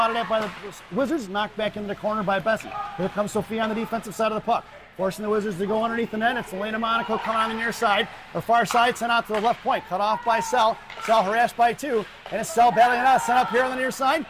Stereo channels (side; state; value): both; identical; correlation 1.00